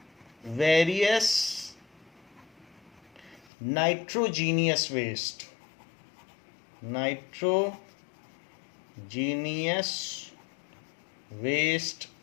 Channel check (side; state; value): right; drops out; at 3.5 s